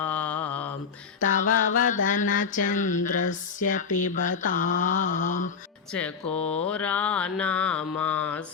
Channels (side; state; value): right; quieter; 5.8 dB